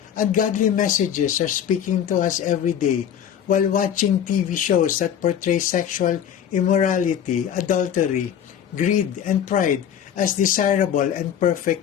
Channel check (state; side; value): quieter; right; 9.2 dB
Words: Ungodly messages are speaking to us every day while watching TV shows that portray sexual immorality, adultery, greed, and pride as desirable and